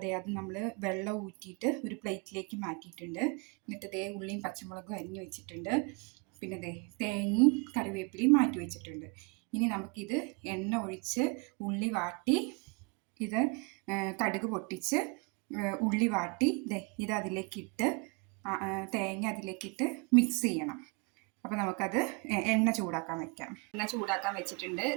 അത് നമ്മൾ വെള്ളം ഊറ്റിയിട്ട് ഒരു പ്ലേറ്റിലേക്ക് മാറ്റിയിട്ടുണ്ട്. എന്നിട്ട് ഉള്ളിയും പച്ചമുളകും അരിഞ്ഞു വെച്ചിട്ടുണ്ട്. പിന്നെ തേങ്ങയും കറിവേപ്പിലയും മാറ്റി വെച്ചിട്ടുണ്ട്. ഇനി നമുക്കിത് എണ്ണ ഒഴിച്ച് ഉള്ളി വാട്ടി, ഇത് കടുക് പൊട്ടിച്ച് ഉള്ളി വാട്ടി ഇത് അതിലേക്കിട്ട് തേങ്ങ അതിലേക്കിട്ട് മിക്സ് ചെയ്യണം. അപ്പോൾ നമുക്കത് എണ്ണ ചൂടാക്കാൻ വെക്കാം. എണ്ണ ചൂടാക്കാൻ വെച്ചിട്ടുണ്ട്.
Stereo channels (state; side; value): quieter; left; 31.5 dB